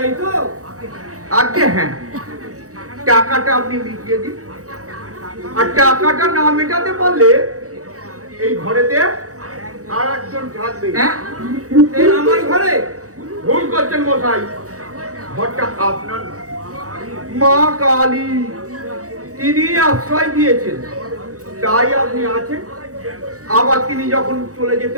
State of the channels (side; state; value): left; late; 0.65 ms